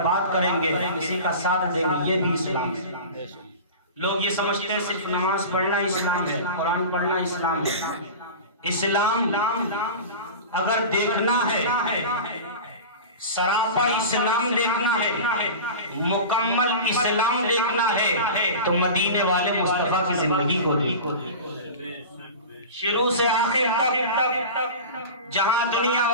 بات کریں گے، کسی کا ساتھ دیں گے، یہ بھی اسلام ہے۔ لوگ یہ سمجھتے ہیں صرف نماز پڑھنا اسلام ہے، قرآن پڑھنا اسلام ہے۔ اسلام اگر دیکھنا ہے، سراپا اسلام دیکھنا ہے، مکمل اسلام دیکھنا ہے تو مدینے والے مصطفیٰ کی زندگی کو دیکھو۔ شروع سے آخر تک جہاں دنیا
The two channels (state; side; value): inverted; both; correlation -0.32